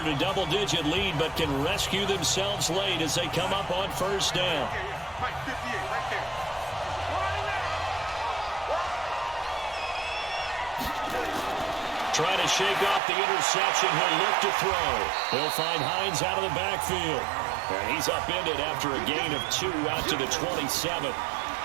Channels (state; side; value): drops out; left; at 13.0 s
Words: a double-digit lead, but can rescue themselves late as they come up on 1st down. Trying to shake off the interception. He'll look to throw. He'll find Hines out of the backfield. And he's upended after a gain of 2 out to the 27.